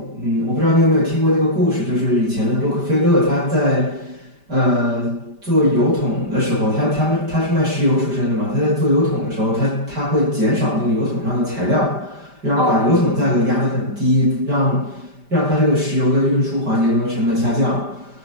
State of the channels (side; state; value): left; late; 5.1 ms